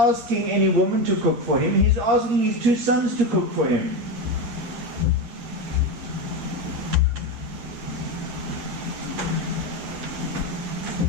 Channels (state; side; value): late; left; 8.5 ms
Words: any woman to cook for him. He's asking his two sons to cook for him.